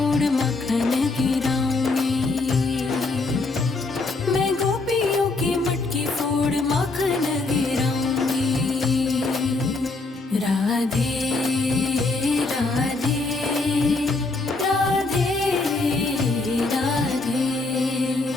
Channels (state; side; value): quieter; right; 3.4 dB